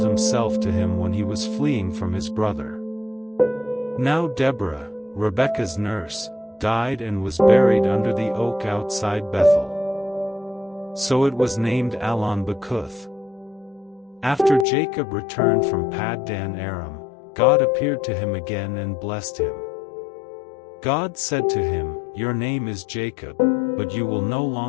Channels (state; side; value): drops out; right; at 14.7 s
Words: himself to him when he was fleeing from his brother. Now Deborah, Rebekah's nurse, died and was buried under the oak outside Bethel. So it was named Allon-Bacuth. After Jacob returned from Paddan Aram, God appeared to him again and blessed him. God said to him, "Your name is Jacob, but you will no